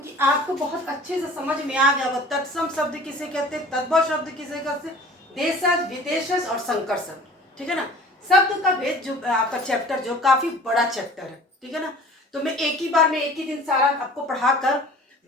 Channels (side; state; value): both; normal; correlation 0.45